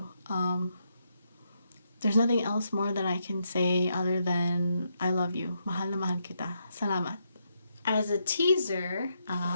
There's nothing else more that I can say other than I love you. Mahal na mahal kita. Salamat. As a teaser,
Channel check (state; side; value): inverted; both; correlation -0.80